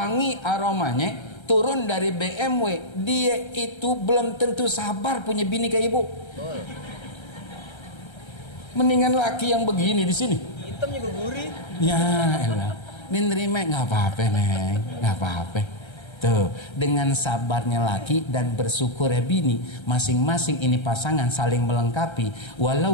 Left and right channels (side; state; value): right; late; 1.3 ms